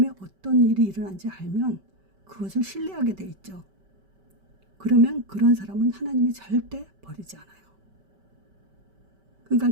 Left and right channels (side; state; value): left; late; 5.2 ms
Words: 어떤 일이 일어난지 알면 그것을 신뢰하게 돼 있죠. 그러면 그런 사람은 하나님이 절대 버리지 않아요. 그러니까